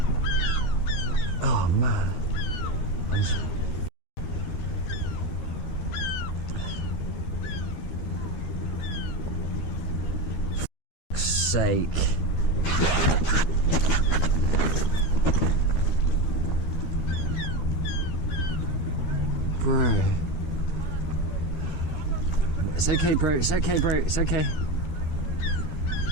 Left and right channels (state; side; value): late; right; 13 ms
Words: Oh, man. I'm so... For fuck's sake. Bro. It's okay, bro. It's okay, bro. It's okay.